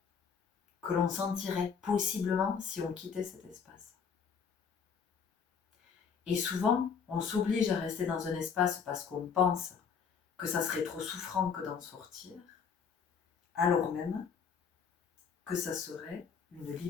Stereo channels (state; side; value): quieter; right; 6.4 dB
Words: que l'on sentirait possiblement si on quittait cet espace. Et souvent, on s'oblige à rester dans un espace parce qu'on pense que ça serait trop souffrant que d'en sortir, alors même que ça serait une